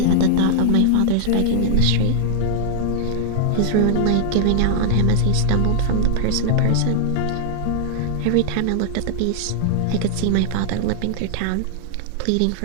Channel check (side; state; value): both; different; correlation -0.01